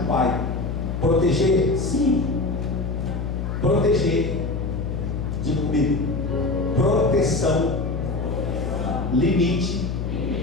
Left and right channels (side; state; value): left; noise; hum, 3 dB below the sound